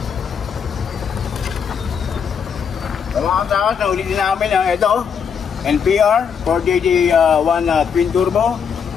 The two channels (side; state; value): right; quieter; 6.9 dB